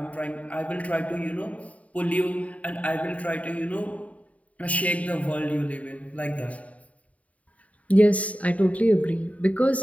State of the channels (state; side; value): late; right; 0.068 ms